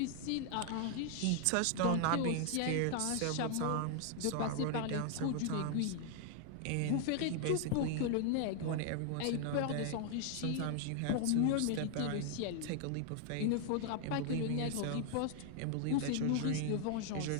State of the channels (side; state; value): both; different; correlation 0.00